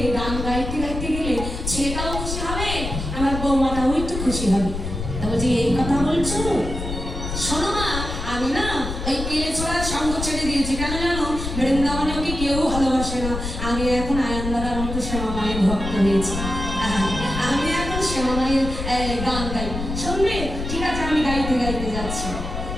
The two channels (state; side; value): noise; left; rumble, 5 dB below the sound